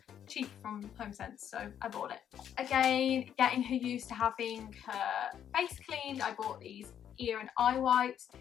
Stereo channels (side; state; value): right; quieter; 9.4 dB